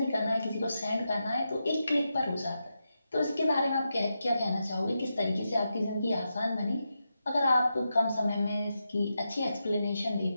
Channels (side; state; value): both; inverted; correlation -0.88